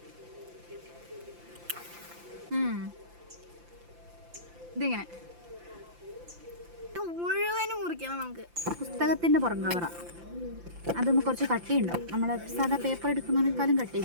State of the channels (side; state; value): left; late; 5.8 ms